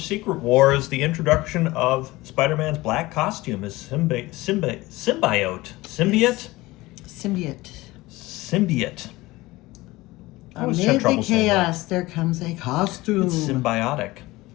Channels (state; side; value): quieter; right; 19.9 dB